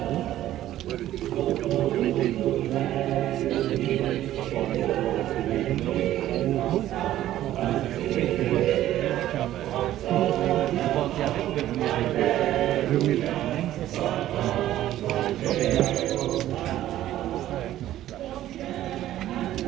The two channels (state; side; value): quieter; left; 13.4 dB